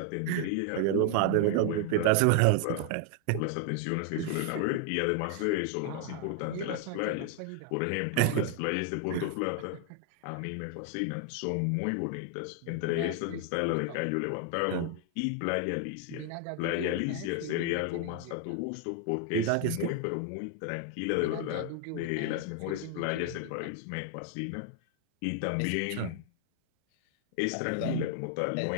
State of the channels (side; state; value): both; different; correlation 0.00